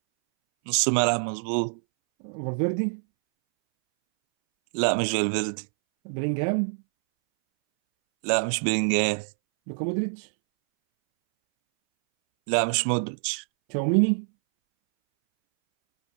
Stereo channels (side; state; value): left; silent; 61 dB below the other